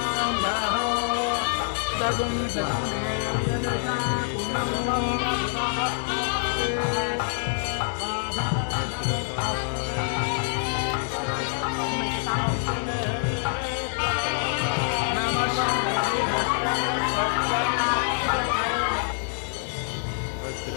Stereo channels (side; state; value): right; silent; digital silence